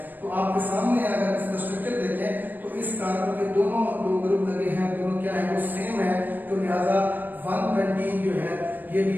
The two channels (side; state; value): left; late; 0.089 ms